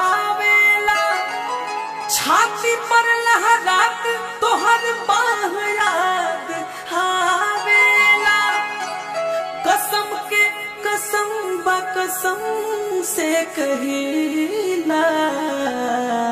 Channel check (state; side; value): identical; both; correlation 1.00